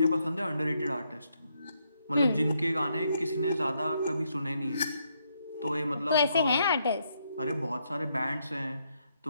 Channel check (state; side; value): inverted; both; correlation -0.77